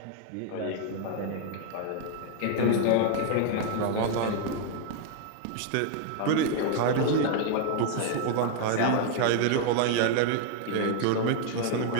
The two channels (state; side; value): different; both; correlation 0.00